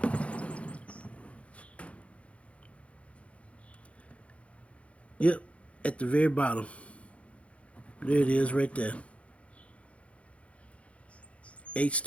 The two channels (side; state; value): right; late; 0.063 ms